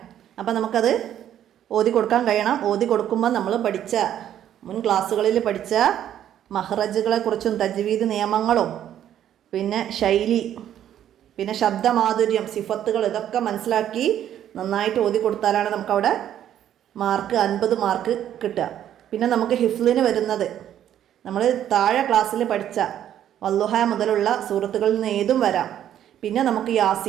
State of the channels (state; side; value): quieter; left; 10.8 dB